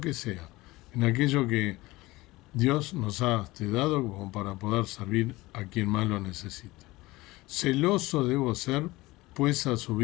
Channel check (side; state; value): right; quieter; 20.1 dB